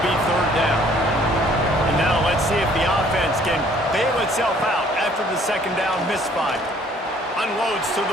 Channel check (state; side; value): normal; both; correlation 0.59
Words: be 3rd down. And now let's see if the offense can bail itself out after the 2nd down misfire. Unloads to